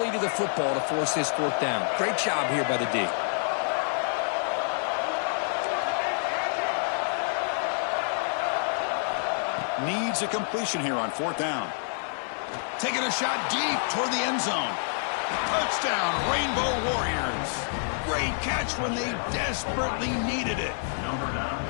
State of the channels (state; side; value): silent; right; digital silence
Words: to the football to force this 4th down. Great job here by the D. Needs a completion here on 4th down. Taking a shot deep toward the end zone. Touchdown, Rainbow Warriors. Great catch when they desperately needed it.